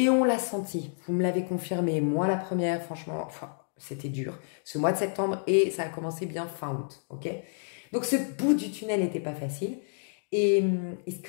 on l'a senti, vous me l'avez confirmé. Moi, la première, franchement, enfin, c'était dur. Ce mois de septembre, et ça a commencé bien fin août, ok? Donc, ce bout du tunnel n'était pas facile. Et ce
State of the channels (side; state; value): right; silent; digital silence